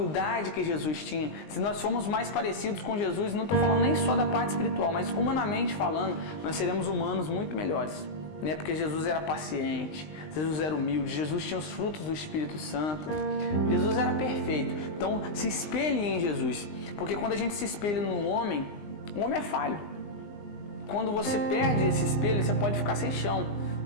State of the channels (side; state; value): right; late; 20 ms